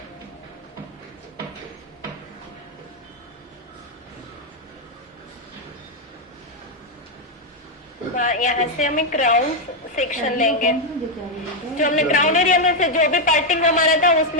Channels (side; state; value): both; normal; correlation 0.01